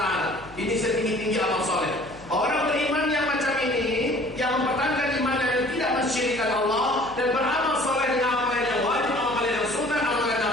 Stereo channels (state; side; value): noise; left; hum, 22 dB below the sound